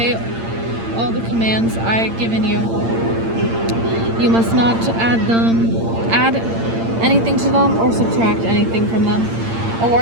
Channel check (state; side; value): late; left; 8.8 ms